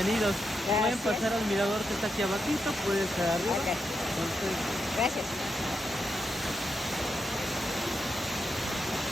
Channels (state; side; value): normal; both; correlation 0.84